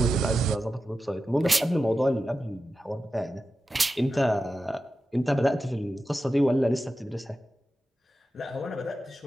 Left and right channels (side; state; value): both; normal; correlation 0.92